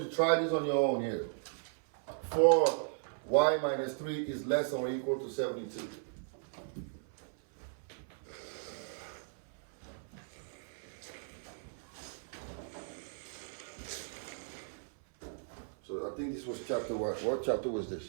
to try this on your own here. 4y minus 3 is less than or equal to 72. So I think this was chapter what? What chapter was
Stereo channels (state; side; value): silent; left; 54 dB below the other